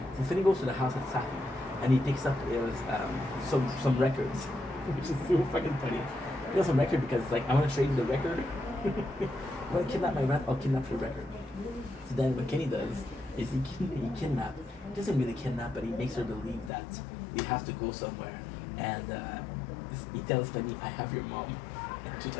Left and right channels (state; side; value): drops out; right; at 16.7 s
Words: So Penny goes to the house with Safi, and he picks up some records, which is so fucking funny. He has some record because it's like, I want to trade the record. I want to kidnap my rat, I'll kidnap your record. So then what Kenny does is he kidnaps. He doesn't really kidnap, but he makes her believe that they have to go somewhere. And he tells Penny, I have your mom. And she's